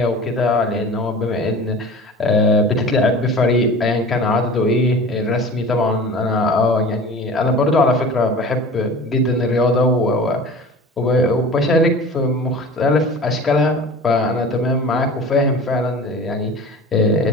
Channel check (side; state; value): both; normal; correlation 0.39